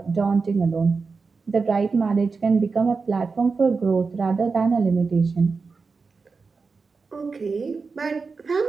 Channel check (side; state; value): left; quieter; 4.6 dB